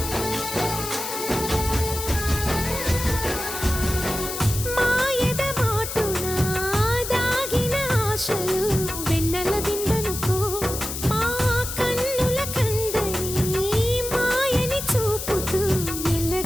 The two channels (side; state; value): left; noise; hiss, 6 dB below the sound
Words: మాయద మాటున దాగిన ఆశలు వెన్నెల విందనుకో మా కన్నుల కందని మాయని చూపుతూ